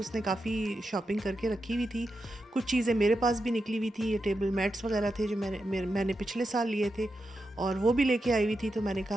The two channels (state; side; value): normal; both; correlation 0.88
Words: काफ़ी शॉपिंग करके रखी हुई थी। कुछ चीज़ें मेरे पास भी निकली हुई थी, ये टेबल मैट्स वगैरह थे जो मैंने पिछले साल लिए थे और वो भी लेके आई हुई थी। तो मैंने